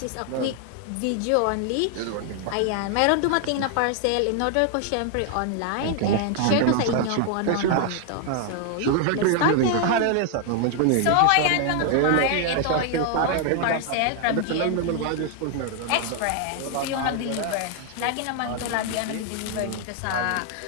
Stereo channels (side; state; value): both; different; correlation 0.00